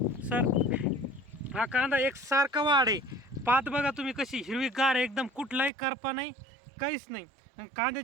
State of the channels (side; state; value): left; drops out; at 5.7 s